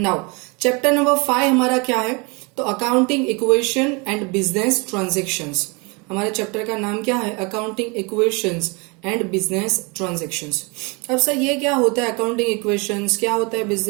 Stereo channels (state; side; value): quieter; left; 29.6 dB